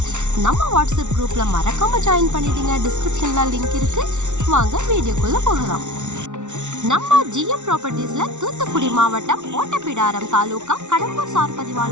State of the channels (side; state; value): left; late; 0.84 ms